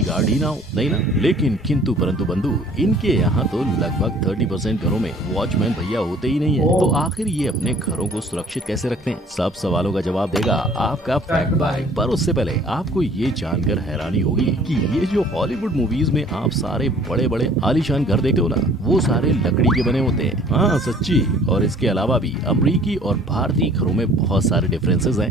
गार्ड ही ना हो? नहीं ना? लेकिन किंतु परंतु बंधु, इनके यहाँ तो लगभग 30% घरों में वॉचमैन भैया होते ही नहीं है। तो आखिर ये अपने घरों को सुरक्षित कैसे रखते हैं? सब सवालों का जवाब देगा आपका फैक्ट भाई। पर उससे पहले आपको ये जानकर हैरानी होगी कि ये जो हॉलीवुड मूवीज में आप सारे बड़े बड़े आलीशान घर देखते हो ना, वो सारे लकड़ी के बने होते हैं। हाँ सच्ची। और इसके अलावा भी अमेरिकी और भारतीय घरों में बहुत सारे डिफरेंसेस हैं,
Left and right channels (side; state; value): both; normal; correlation 0.53